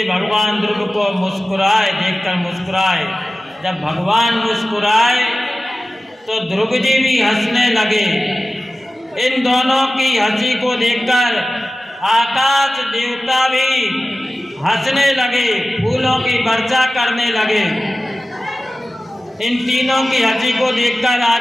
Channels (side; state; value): both; normal; correlation 0.96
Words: भगवान ध्रुव को मुस्कुराए, देखकर मुस्कुराए। जब भगवान मुस्कुराए तो ध्रुव जी भी हंसने लगे। इन दोनों की हंसी को देखकर आकाश देवता भी हंसने लगे, फूलों की वर्षा करने लगे। इन तीनों की हंसी को देखकर